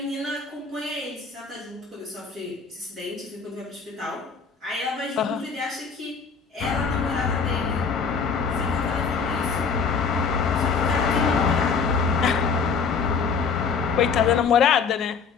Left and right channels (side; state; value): right; quieter; 5.6 dB